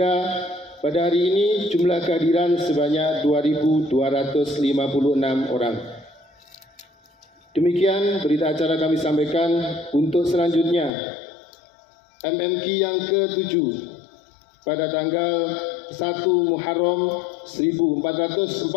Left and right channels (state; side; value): drops out; right; at 10.9 s